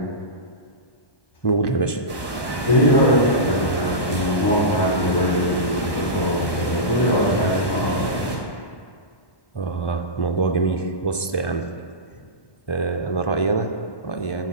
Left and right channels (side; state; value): right; late; 1.1 ms